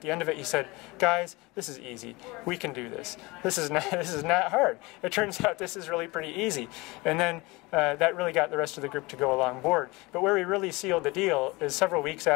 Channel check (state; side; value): quieter; right; 23.7 dB